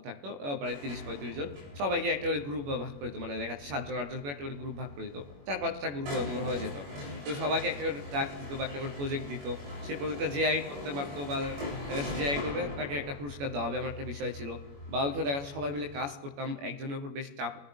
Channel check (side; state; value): left; late; 21 ms